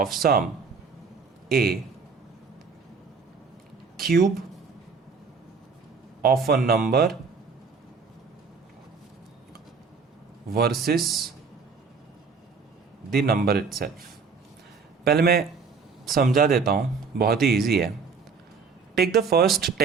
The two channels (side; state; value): left; quieter; 5.1 dB